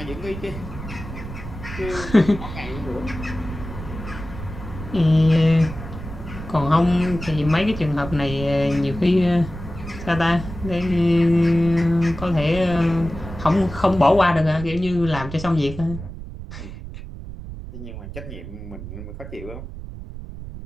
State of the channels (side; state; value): right; noise; rumble, 11 dB below the sound